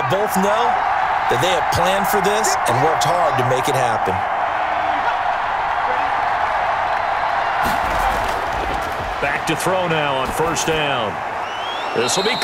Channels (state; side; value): identical; both; correlation 1.00